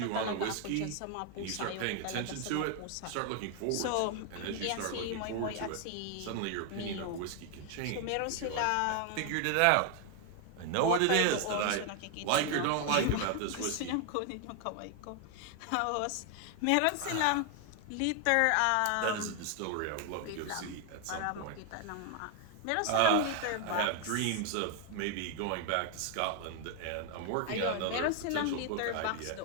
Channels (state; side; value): different; both; correlation 0.00